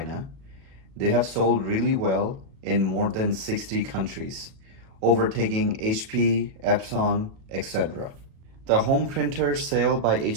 They have sold really well in more than 60 countries, overtaking HP, Epson, etc. The home printer sale by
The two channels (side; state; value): left; late; 36 ms